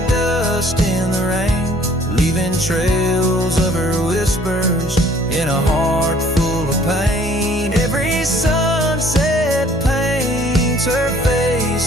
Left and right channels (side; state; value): both; normal; correlation 0.57